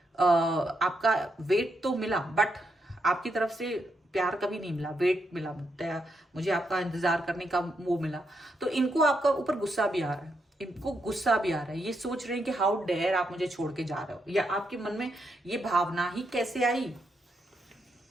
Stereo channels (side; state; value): both; normal; correlation 0.80